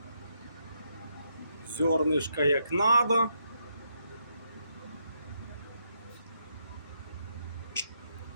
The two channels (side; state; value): both; inverted; correlation -0.79